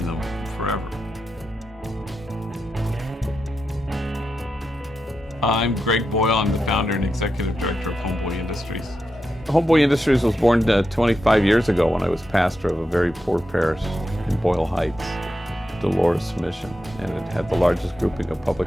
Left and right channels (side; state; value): both; normal; correlation 0.88